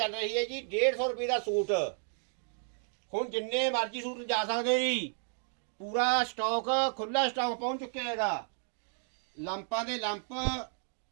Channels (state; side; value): silent; left; 56 dB below the other